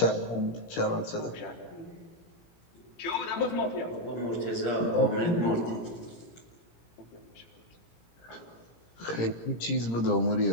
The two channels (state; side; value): late; right; 17 ms